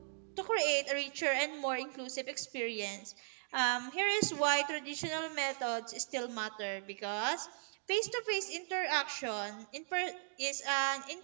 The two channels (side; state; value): left; silent; digital silence